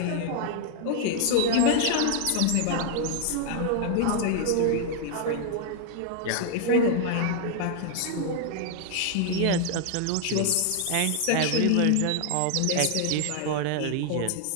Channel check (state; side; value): different; both; correlation 0.00